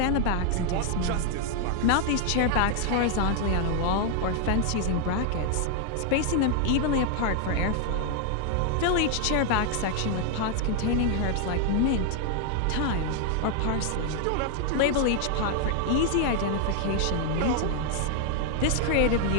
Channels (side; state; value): both; different; correlation 0.00